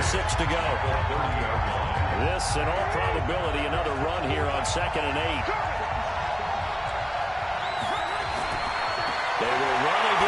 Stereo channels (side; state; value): both; identical; correlation 1.00